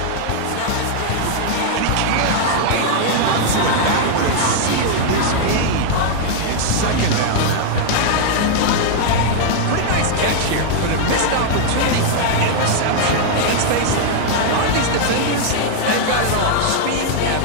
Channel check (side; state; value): both; different; correlation -0.01